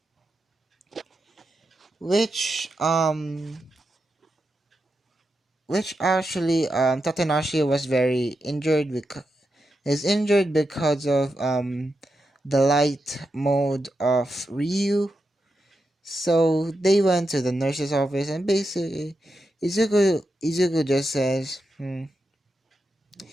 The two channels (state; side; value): normal; both; correlation 0.87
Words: Which which actually Tatanashi was very injured because is injured because of the light mode of Ryu. So they went to the nurse's office and basically Izuku just says,